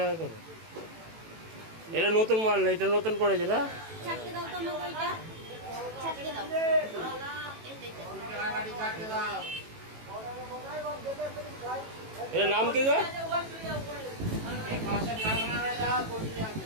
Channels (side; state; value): left; late; 18 ms